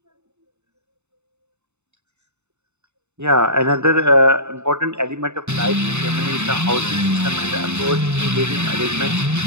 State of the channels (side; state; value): left; late; 0.82 ms